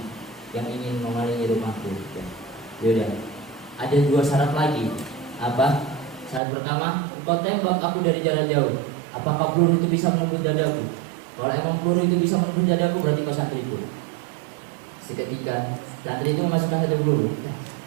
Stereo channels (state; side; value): drops out; left; at 6.4 s